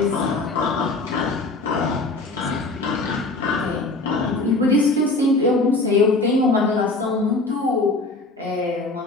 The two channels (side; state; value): right; quieter; 3.1 dB